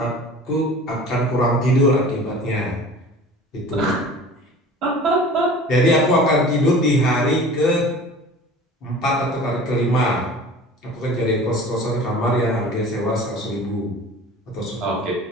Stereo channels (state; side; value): normal; both; correlation 0.42